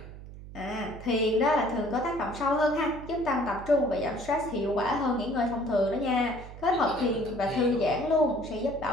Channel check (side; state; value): right; noise; hum, 14 dB below the sound